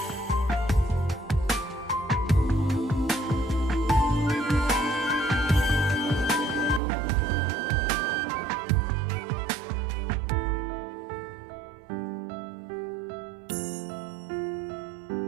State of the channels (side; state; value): left; drops out; at 6.8 s